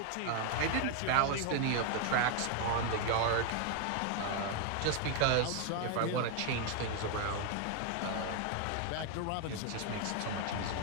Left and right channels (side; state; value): both; different; correlation 0.00